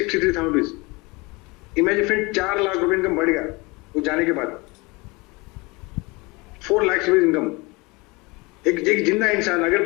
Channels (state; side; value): quieter; right; 25.5 dB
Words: रुपीज। इमेजिन फ्रेंड 4 लाख रुपए इनकम बढ़ गया वो जाने के बाद, 4 लाख रुपीज इनकम। एक जिंदा इंसान